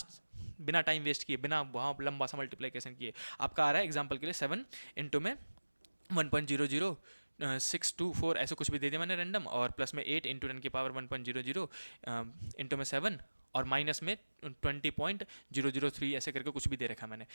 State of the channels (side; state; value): both; inverted; correlation -1.00